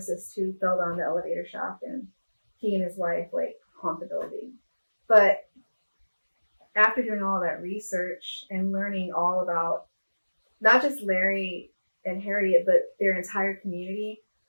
who fell down the elevator shaft, and he and his wife like haunt the building. But after doing all that research and learning all about not just Larry and Harriet, but their entire community,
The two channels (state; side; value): inverted; both; correlation -1.00